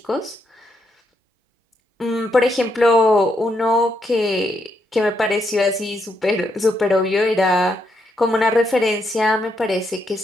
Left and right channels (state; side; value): normal; both; correlation 0.78